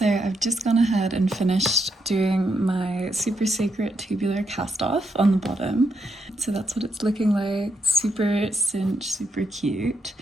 I've just gone ahead and finished doing my super secret tubular cast off on the bottom. So that's what it's looking like, super cinched, super cute.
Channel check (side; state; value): both; normal; correlation 0.79